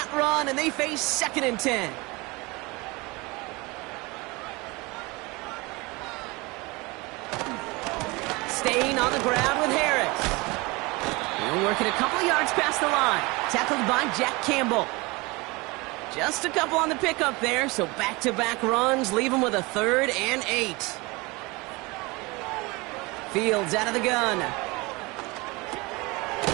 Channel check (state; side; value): quieter; left; 24.8 dB